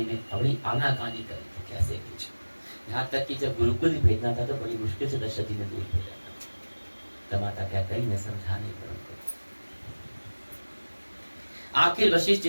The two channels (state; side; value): inverted; both; correlation -1.00